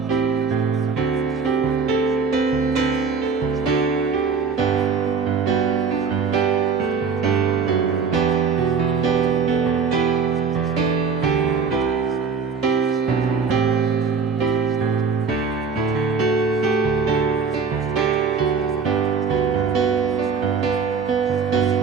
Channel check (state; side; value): quieter; left; 5.5 dB